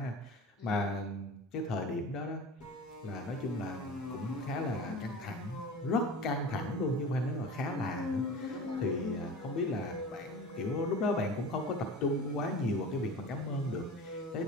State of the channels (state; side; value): normal; both; correlation 0.35